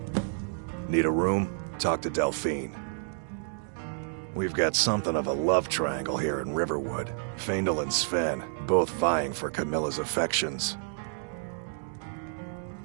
Need a room? Talk to Delphine. We've got something of a love triangle here in Riverwood. Faendal and Sven, both vying for Camilla's affections.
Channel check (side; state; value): left; silent; 58 dB below the other